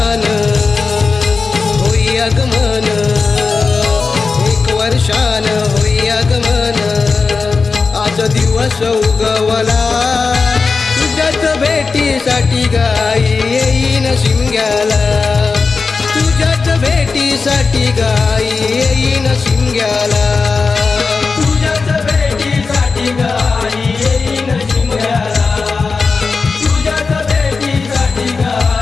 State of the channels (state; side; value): quieter; right; 4.5 dB